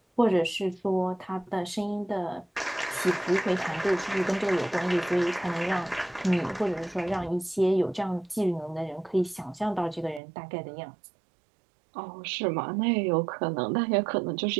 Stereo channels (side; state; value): left; drops out; at 10.2 s